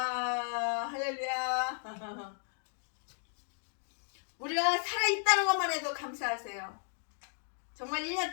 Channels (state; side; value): silent; right; digital silence